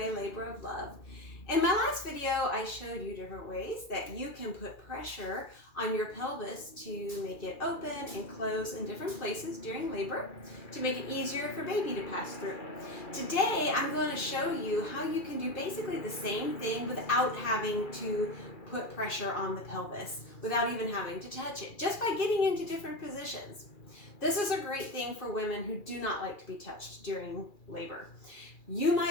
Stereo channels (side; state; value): right; late; 2.4 ms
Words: Labor of Love. In my last video, I showed you different ways that you can put pressure on your pelvis to make it open and close in different places during labor to make it easier for baby to pass through. Today, I'm going to show you how you can do basically the same thing without having to put pressure on the pelvis, without even having to touch it, just by getting into different positions. This is a great thing for women who do not like to be touched during labor. You